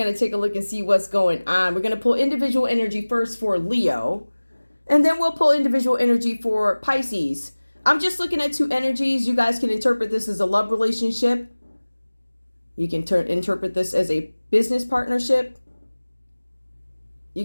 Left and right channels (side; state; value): both; inverted; correlation -1.00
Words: to take a look and see what's going on. We're going to pull individual energy first for Leo, and then we'll pull individual energy for Pisces. I'm just looking at two energies. You guys can interpret this as a love relationship. You can interpret this as a business partnership. You